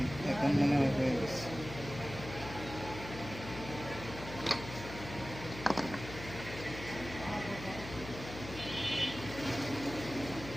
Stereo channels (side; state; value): left; noise; hum, 11 dB below the sound